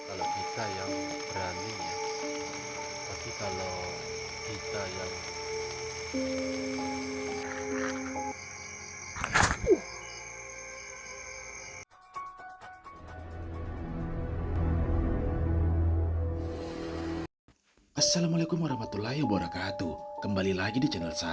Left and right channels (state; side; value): identical; both; correlation 1.00